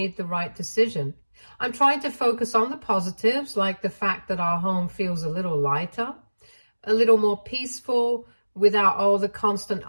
the right decision. I'm trying to focus on the positives, like the fact that our home feels a little lighter, a little more peaceful, without all the constant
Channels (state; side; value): inverted; both; correlation -1.00